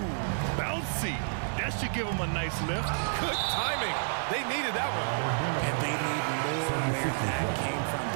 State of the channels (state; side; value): silent; left; 57 dB below the other